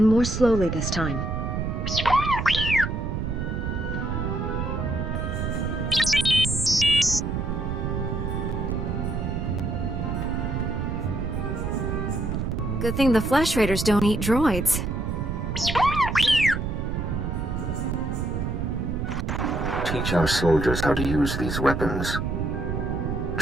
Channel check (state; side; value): noise; right; rumble, 2 dB below the sound